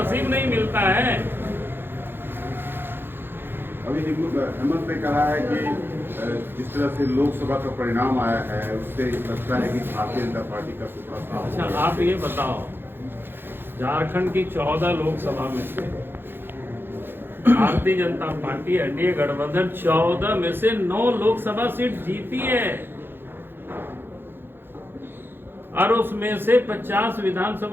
नहीं मिलता है। अभी हेमंत ने कहा है कि जिस तरह से लोकसभा का परिणाम आया है उससे लगता है कि भारतीय जनता पार्टी का सूत्रा साफ। अच्छा आप ये बताओ, झारखंड की 14 लोकसभा में से भारतीय जनता पार्टी एनडीए गठबंधन 14 में से 9 लोकसभा सीट जीती है, और उसमें से 50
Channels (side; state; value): left; late; 0.10 ms